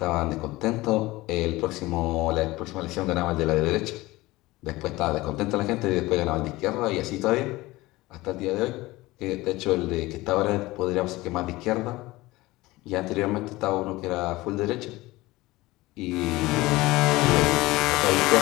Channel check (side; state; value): right; quieter; 19.7 dB